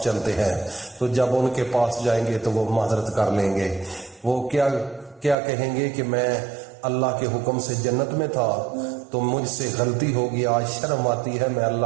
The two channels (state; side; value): drops out; left; at 5.4 s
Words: چلتے ہیں۔ تو جب ان کے پاس جائیں گے تو وہ معذرت کر لیں گے، وہ کیا کہیں گے کہ میں اللہ کے حکم سے جنت میں تھا تو مجھ سے غلطی ہوگی، آج شرم آتی ہے، میں